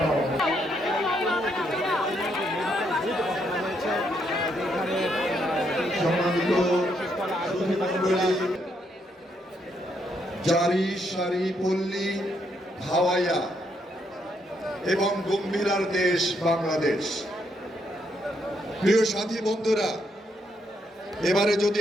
সম্মানিত জারি সারি পল্লী ভাওয়াইয়া এবং গম্ভীরার দেশ বাংলাদেশ। প্রিয় সাথী বন্ধুরা, এবারে যদি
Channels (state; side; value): normal; both; correlation 0.76